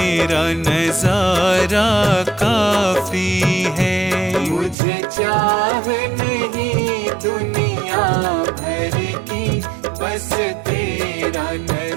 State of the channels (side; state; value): left; drops out; at 4.8 s